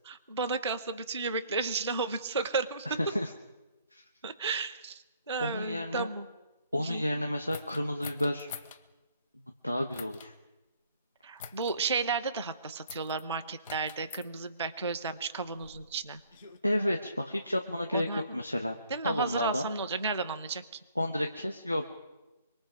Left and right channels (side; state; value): both; inverted; correlation -0.62